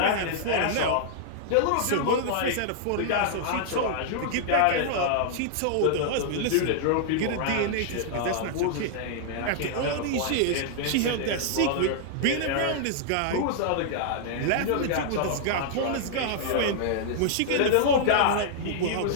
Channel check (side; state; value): both; different; correlation -0.01